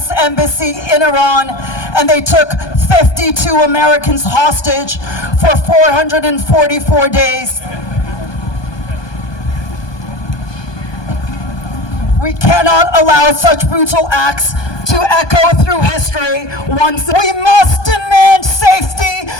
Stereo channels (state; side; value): late; right; 1.2 ms